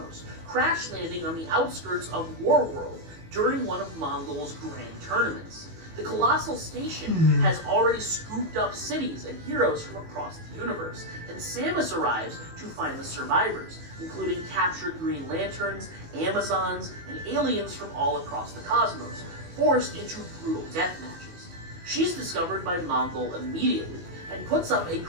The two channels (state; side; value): late; left; 18 ms